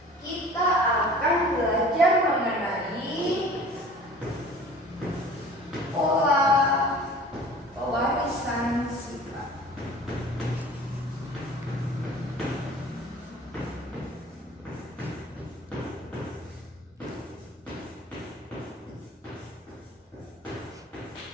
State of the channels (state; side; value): normal; both; correlation 0.45